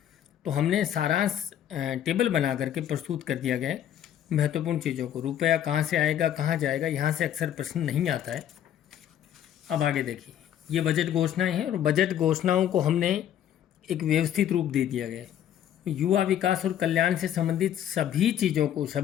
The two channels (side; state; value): right; quieter; 10.5 dB